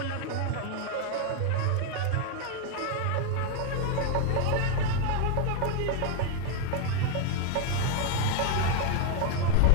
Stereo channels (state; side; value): different; both; correlation 0.01